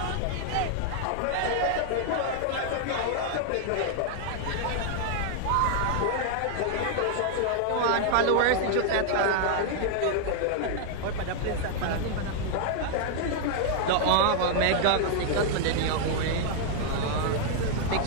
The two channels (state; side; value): different; both; correlation 0.00